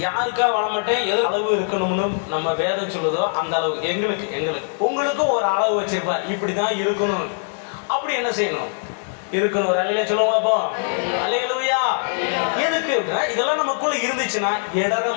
யாருக்காக வாழ மாட்டேன். எது அளவு இருக்கணும்னு நம்ம வேதம் சொல்லுதோ அந்த அளவு எங்களுக்கு உங்களுக்கும் ஒரு அளவு வச்சிருப்பார். இப்படி தான் இருக்கணும், அப்படி என்ன செய்யணும், இருக்கணும். ஒரு அலையில சொல்லுவோம் அப்போ, அல்லேலூயா. எதுக்கு அப்படின்னா இதெல்லாம் நமக்குள்ள இருந்துச்சுன்னா இடற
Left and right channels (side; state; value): right; silent; digital silence